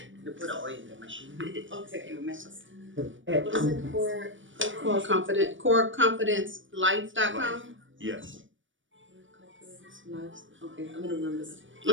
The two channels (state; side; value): late; left; 0.56 ms